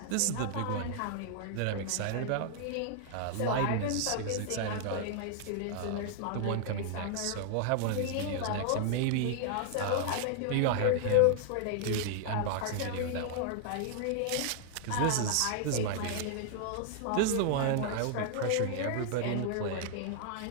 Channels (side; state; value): both; different; correlation 0.00